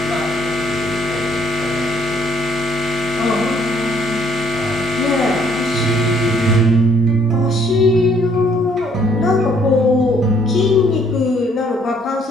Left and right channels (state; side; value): normal; both; correlation 0.64